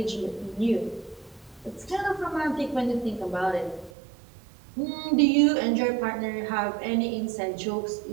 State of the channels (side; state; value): left; drops out; at 3.9 s